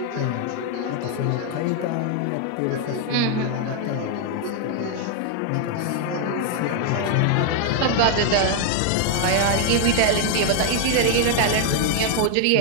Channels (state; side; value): different; both; correlation 0.01